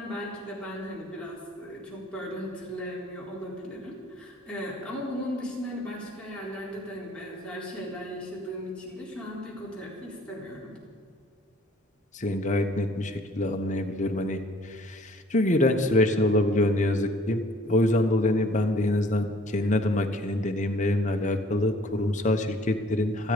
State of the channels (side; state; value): both; normal; correlation 0.57